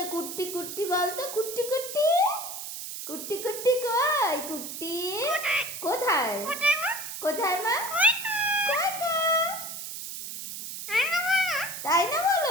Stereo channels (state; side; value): noise; right; hiss, 8 dB below the sound